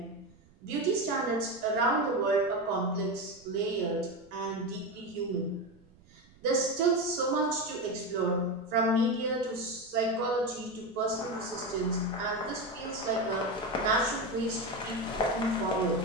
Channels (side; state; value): right; noise; rumble, 27 dB below the sound